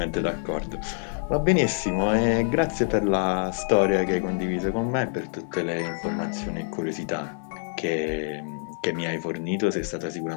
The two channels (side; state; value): right; silent; 58 dB below the other